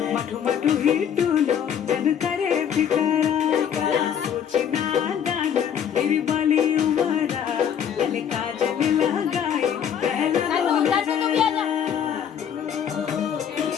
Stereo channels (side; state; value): right; quieter; 8.5 dB